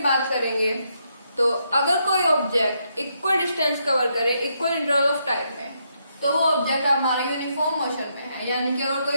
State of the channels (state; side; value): inverted; both; correlation -0.78